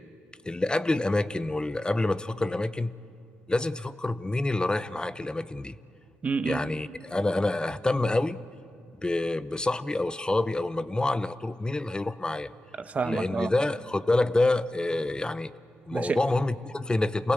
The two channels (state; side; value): normal; both; correlation 0.94